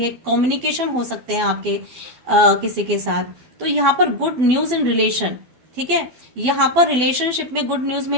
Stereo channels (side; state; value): left; late; 12 ms